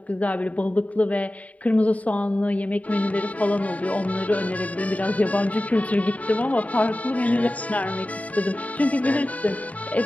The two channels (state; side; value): late; right; 0.069 ms